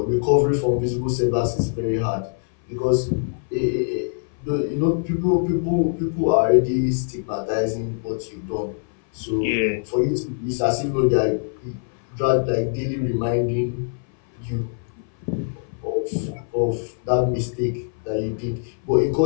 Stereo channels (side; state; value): right; silent; 58 dB below the other